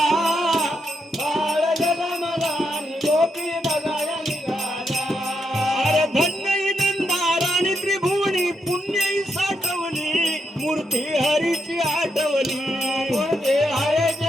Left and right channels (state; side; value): normal; both; correlation 0.81